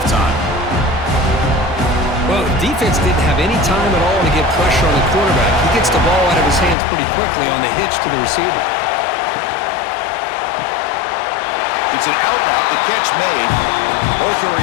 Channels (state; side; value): drops out; right; at 6.8 s